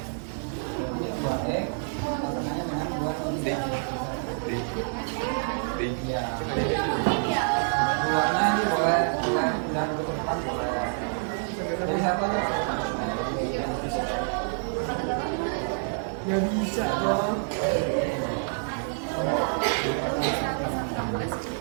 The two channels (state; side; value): silent; left; 60 dB below the other